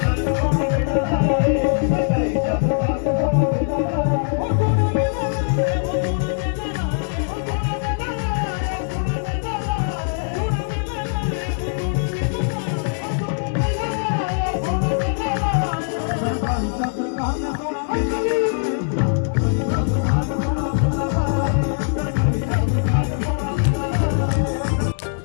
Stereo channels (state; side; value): silent; right; digital silence